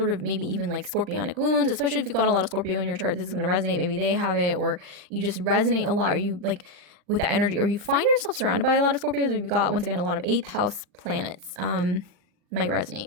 of maybe even like scorpionic wounds, especially if you've got a lot of Scorpio in your chart, this is going to resonate. Maybe they have it, or you just resonate a lot, or you like with that energy, or you find yourself surrounded by a lot of Scorpios, or you've got, once again, a lot of 8th house planets, might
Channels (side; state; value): left; late; 40 ms